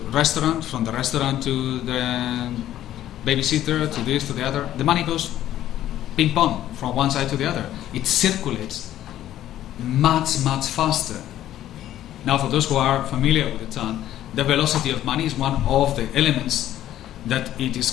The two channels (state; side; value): quieter; right; 12.6 dB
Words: restaurant, from the restaurant to the babysitter, to this, to the other. The money goes ping pong from one side to the other. It circulates much, much faster. Now, for those who are familiar with the term, the velocity of money is one of the elements that it is